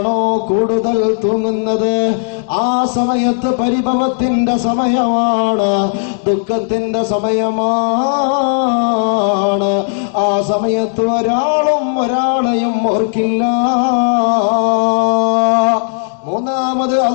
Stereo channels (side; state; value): right; silent; digital silence